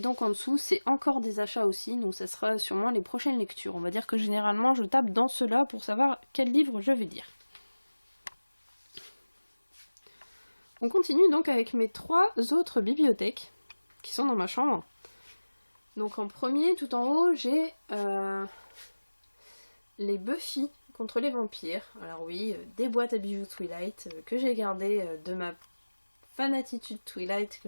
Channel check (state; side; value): inverted; both; correlation -1.00